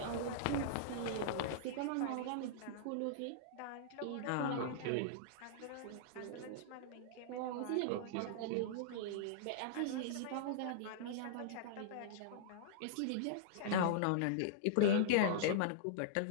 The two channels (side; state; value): both; different; correlation -0.02